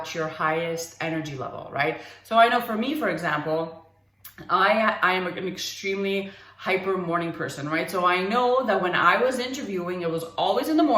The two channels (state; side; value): identical; both; correlation 1.00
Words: your highest energy level, right? So I know for me, for example, I am an extremely hyper morning person, right? So I know that when I was interviewing, it was always in the